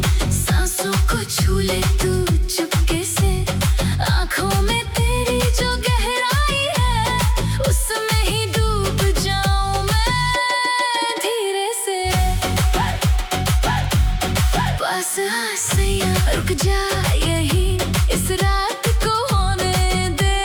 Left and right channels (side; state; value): both; identical; correlation 1.00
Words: सांसों को छू ले तू चुपके से। आंखों में तेरी जो गहराई है उसमें ही डूब जाऊं मैं धीरे से। पास आ सैया, रुक जा यही इस रात को होने दे